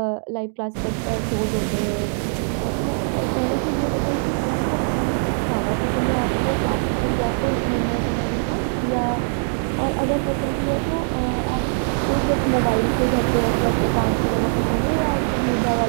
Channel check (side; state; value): left; silent; digital silence